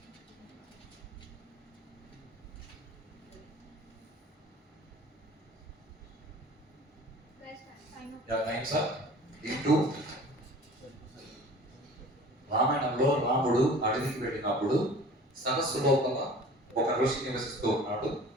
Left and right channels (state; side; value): normal; both; correlation 0.44